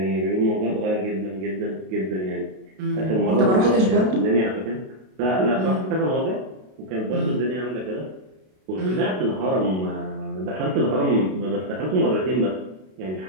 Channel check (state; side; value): late; left; 32 ms